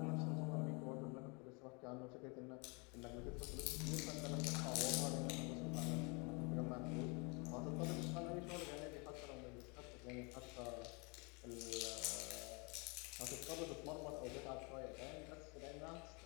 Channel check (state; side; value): quieter; right; 31.2 dB